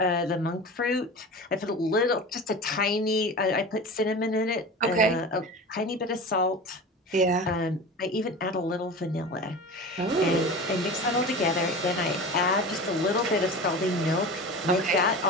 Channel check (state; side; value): normal; both; correlation 0.32